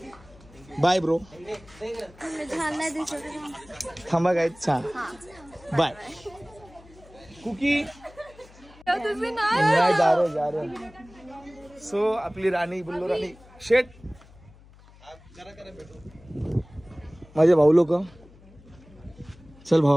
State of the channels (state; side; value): noise; left; hum, 24 dB below the sound